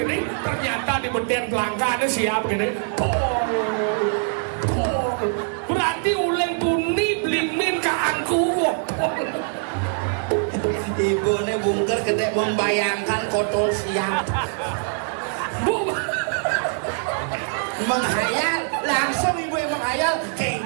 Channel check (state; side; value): silent; left; 56 dB below the other